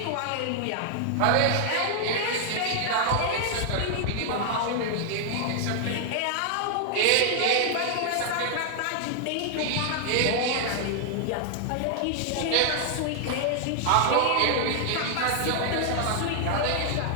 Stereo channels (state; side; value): different; both; correlation 0.00